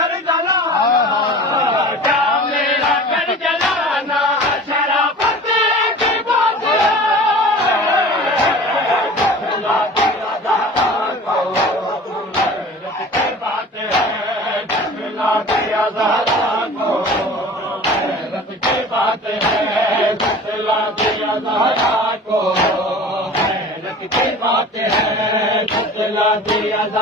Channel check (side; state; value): both; normal; correlation 0.40